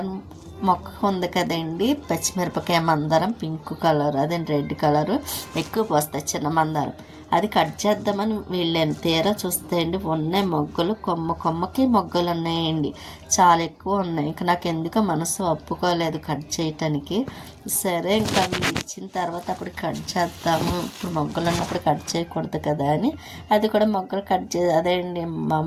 మొక్క ఉంది కదండి, పచ్చిమిరపకాయ మందారం పింక్ కలర్, అదే రెడ్ కలరు ఎక్కువ పోస్తాయి చిన్న మందారం. అది కట్ చేద్దామని వెళ్ళాను, తీరా చూస్తే అండి ఉన్నాయి మొగ్గలు, కొమ్మకి మొగ్గలు ఉన్నాయండి, చాలా ఎక్కువ ఉన్నాయి. ఇంకా నాకు ఎందుకో మనసు ఒప్పుకోలేదు కట్ చేయటానికి. సరే ఇంకా ఇచ్చిన తర్వాత అప్పుడు కట్ చేద్దాము, ఇప్పుడు మొగ్గలు ఉన్నప్పుడు కట్ చేయకూడదు కదా అని అది కూడా మొగ్గలు అదే అండి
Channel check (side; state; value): both; identical; correlation 1.00